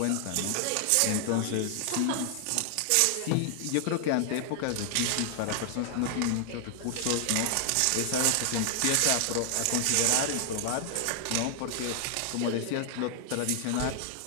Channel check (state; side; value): different; both; correlation 0.00